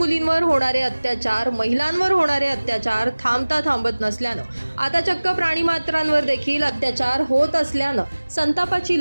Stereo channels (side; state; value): both; inverted; correlation -1.00